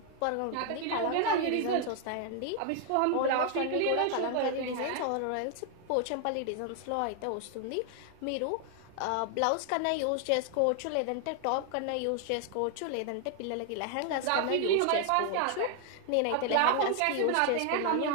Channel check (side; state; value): both; different; correlation 0.00